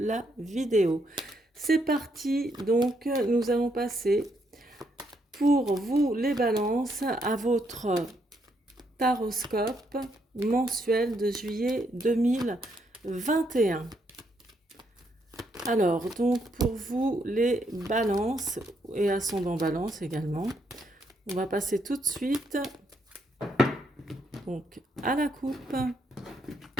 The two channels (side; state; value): both; normal; correlation 0.75